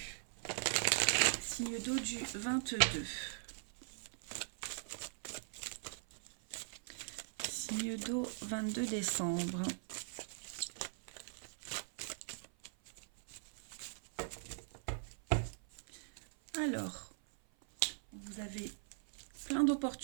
Signe d'eau du 22. Signe d'eau 22 décembre. Alors, vous avez plein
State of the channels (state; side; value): silent; left; 51 dB below the other